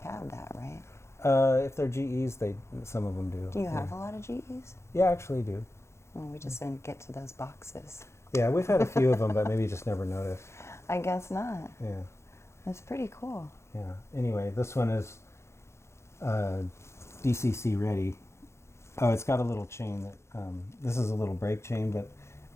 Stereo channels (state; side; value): late; right; 0.13 ms